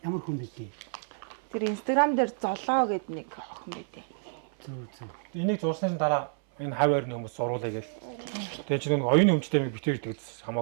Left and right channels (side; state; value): left; silent; 58 dB below the other